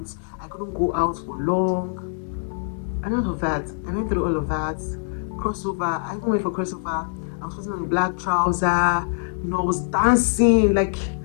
I couldn't go out for long, and all of that. I went through all of that. Crossover, I even went for crossover. I was putting on a black trouser, I was dancing, like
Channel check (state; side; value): silent; right; digital silence